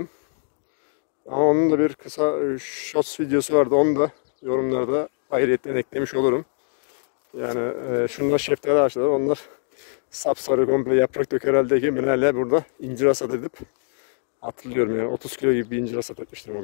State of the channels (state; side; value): silent; right; 62 dB below the other